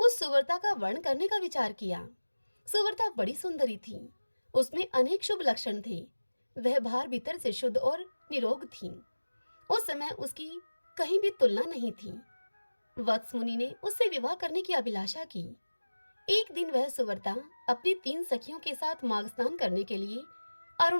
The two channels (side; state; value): both; inverted; correlation -1.00